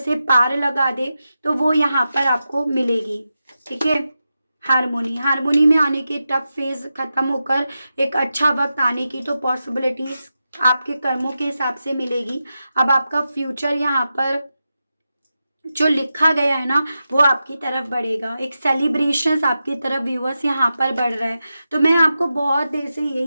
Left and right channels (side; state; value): both; inverted; correlation -0.90